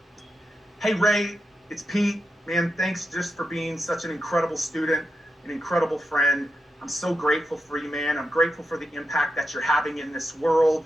Hey, Ray, it's Pete. Man, thanks just for being such an incredible student, an incredible friend. I'm so grateful for you, man. I'm grateful for the impact that you're having in this world.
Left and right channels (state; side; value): normal; both; correlation 0.87